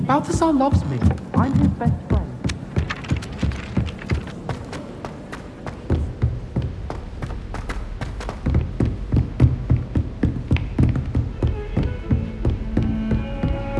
Balthasar loves me. I'm his best friend.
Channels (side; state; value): both; identical; correlation 1.00